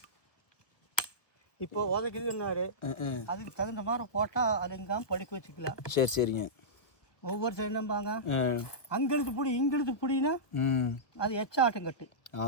இப்போ உதைக்குதுன்னாரு, அதுக்கு தகுந்த மாதிரி போட்டால் அது எங்காம படிக்க வச்சுக்கலாம். சரி சரிங்க. ஒவ்வொரு சைடு நம்பாங்க அங்கெழுத்து பிடி இங்கெழுத்து பிடினா அது எச்சாட்டம் கட்டு.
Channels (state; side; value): late; right; 1.3 ms